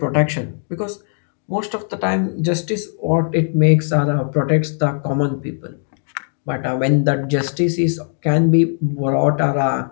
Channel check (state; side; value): silent; right; digital silence